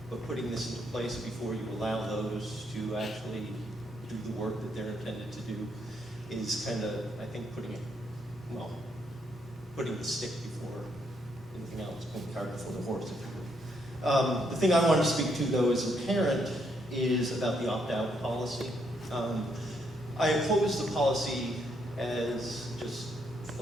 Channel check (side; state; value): both; normal; correlation 0.75